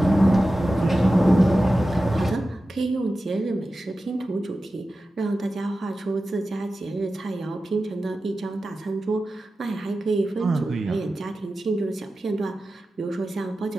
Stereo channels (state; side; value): normal; both; correlation 0.94